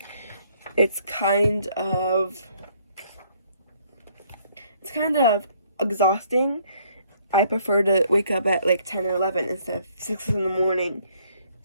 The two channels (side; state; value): both; inverted; correlation -0.65